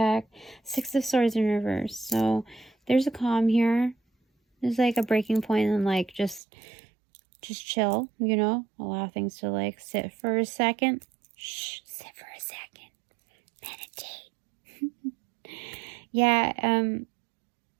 6 of Swords in reverse. So there's a calm here. There's like a breaking point and like just chill, you know, allow things to like sit for a second. Shh, sit for a second. Meditate. Yeah,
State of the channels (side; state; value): left; drops out; at 6.4 s